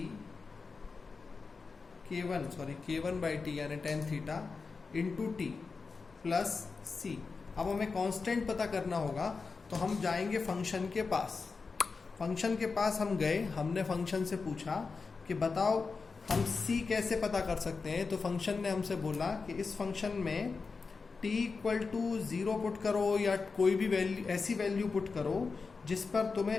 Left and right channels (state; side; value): quieter; right; 4.6 dB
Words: k1 by T यानी tan theta into T plus C. अब हमें कांस्टेंट पता करना होगा, तो हम जाएंगे फंक्शन के पास। फंक्शन के पास हम गए, हमने फंक्शन से पूछा कि बताओ हम c कैसे पता कर सकते हैं। तो फंक्शन ने हमसे बोला कि इस फंक्शन में t इक्वल टू 0 पुट करो या कोई भी वैल्यू, ऐसी वैल्यू पुट करो जिस पर